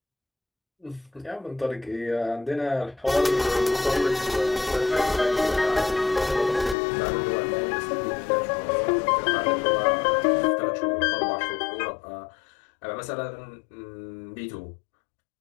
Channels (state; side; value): drops out; right; at 6.8 s